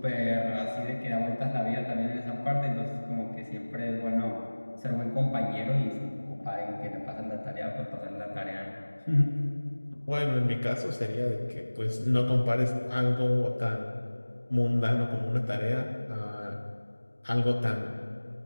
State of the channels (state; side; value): inverted; both; correlation -1.00